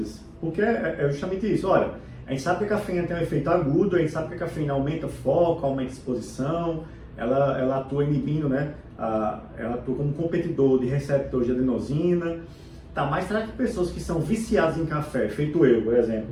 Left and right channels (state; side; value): identical; both; correlation 1.00